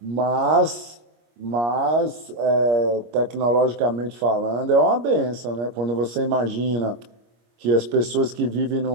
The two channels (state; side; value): late; left; 25 ms